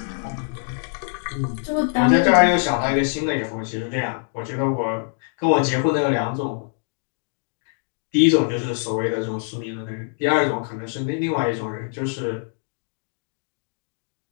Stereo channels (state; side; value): silent; right; digital silence